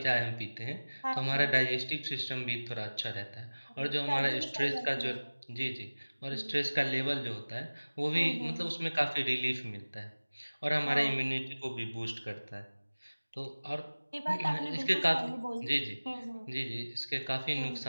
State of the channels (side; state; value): both; inverted; correlation -1.00